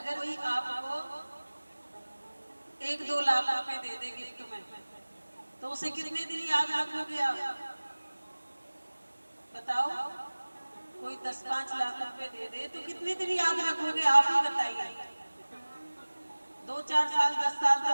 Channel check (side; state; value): both; inverted; correlation -1.00